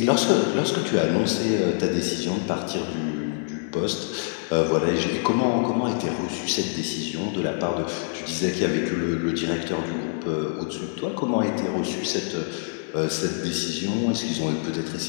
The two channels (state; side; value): silent; right; 62 dB below the other